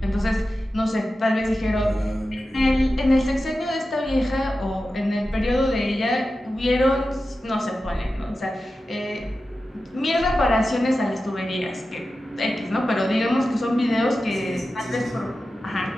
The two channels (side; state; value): both; normal; correlation 0.93